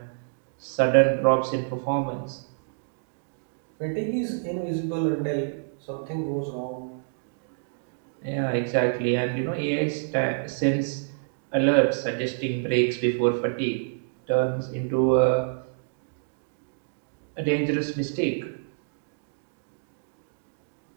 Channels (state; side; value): silent; left; digital silence